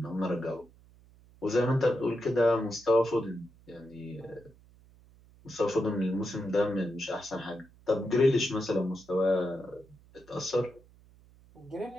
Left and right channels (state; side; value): noise; right; hum, 26 dB below the sound